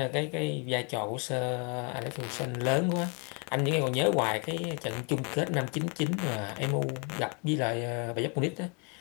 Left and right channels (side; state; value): right; quieter; 34.5 dB